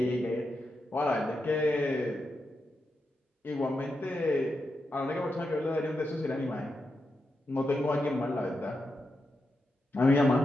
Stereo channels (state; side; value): normal; both; correlation 0.86